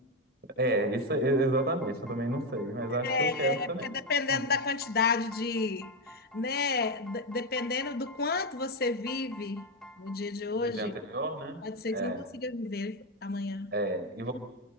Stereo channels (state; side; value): normal; both; correlation 0.07